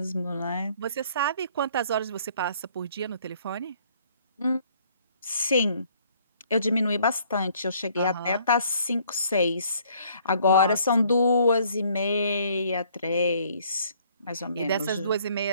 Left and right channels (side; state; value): both; inverted; correlation -0.61